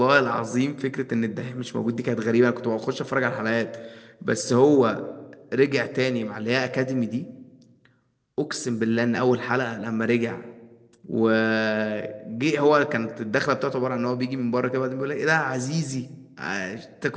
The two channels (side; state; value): both; identical; correlation 1.00